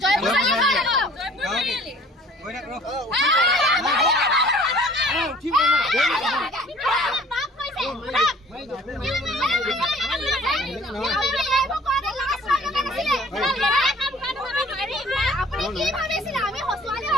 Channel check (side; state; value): both; normal; correlation 0.52